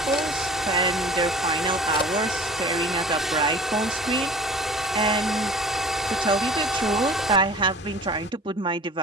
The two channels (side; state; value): both; normal; correlation 0.45